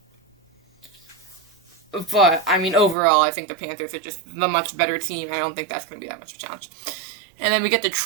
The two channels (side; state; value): left; drops out; at 3.0 s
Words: But, I mean, overall, I think the Panthers are just the much better team. I don't think that's going to be that much of a challenge. And then we get